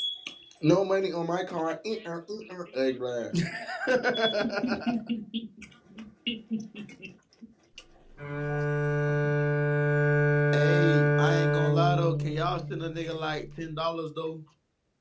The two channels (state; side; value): identical; both; correlation 1.00